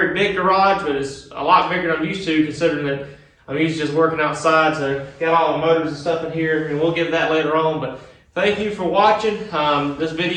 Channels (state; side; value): identical; both; correlation 1.00